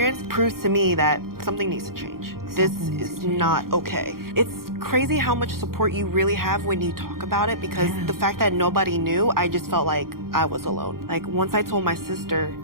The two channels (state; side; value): late; left; 0.92 ms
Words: proves to me that something needs to change. This is not okay. It's crazy how much support you really have when you talk about it, because the fact that nobody knew, I just felt like I was alone. Like, once I told my sister,